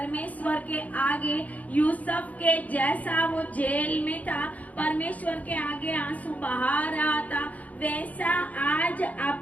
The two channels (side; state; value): right; late; 0.073 ms